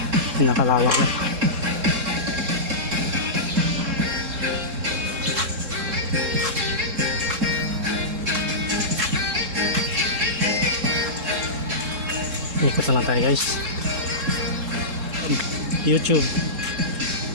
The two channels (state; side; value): late; left; 3.7 ms